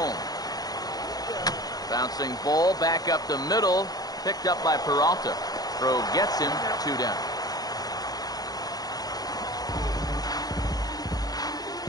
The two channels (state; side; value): late; right; 0.18 ms